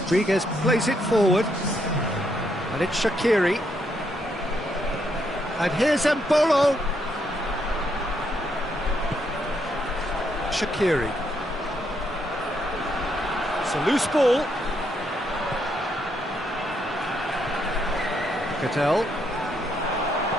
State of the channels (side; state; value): both; normal; correlation 0.76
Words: plays it forward, and it's Shaqiri. And here's Mbolo. Shaqiri. It's a loose ball. Cattell.